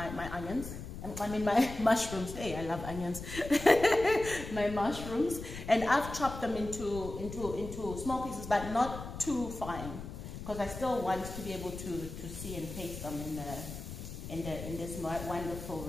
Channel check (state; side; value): noise; left; rumble, 10 dB below the sound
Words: onions. I mean my mushrooms. Hey, I love onions. My mushrooms, and I've chopped them into small pieces, but not too fine, because I still want to be able to see and taste them in this wonderful